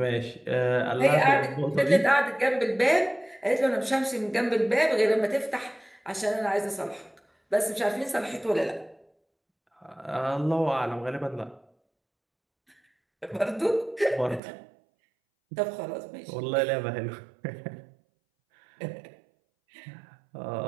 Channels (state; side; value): drops out; left; at 14.4 s